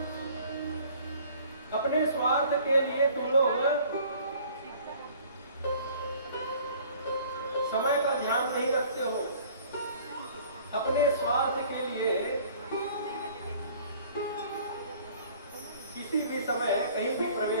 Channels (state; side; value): inverted; both; correlation -0.52